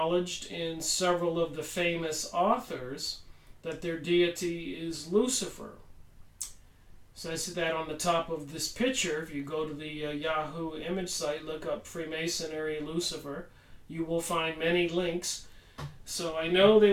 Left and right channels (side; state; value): both; identical; correlation 1.00